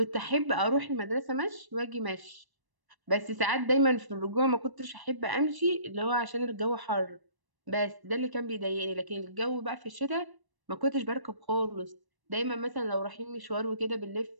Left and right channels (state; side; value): late; left; 1.0 ms